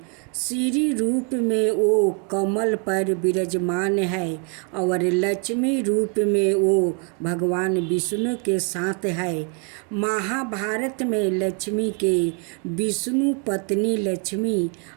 श्री रूप में वो कमल पर विराजमान है और लक्ष्मी रूप में वो भगवान विष्णु के साथ है। महाभारत में लक्ष्मी के विष्णु पत्नी लक्ष्मी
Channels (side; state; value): left; quieter; 37.8 dB